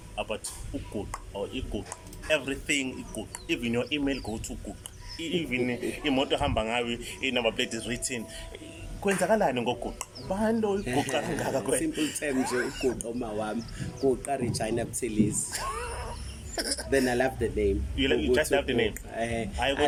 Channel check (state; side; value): identical; both; correlation 1.00